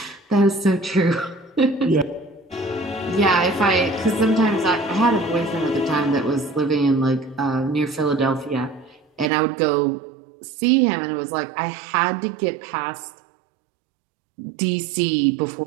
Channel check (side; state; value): left; drops out; at 9.3 s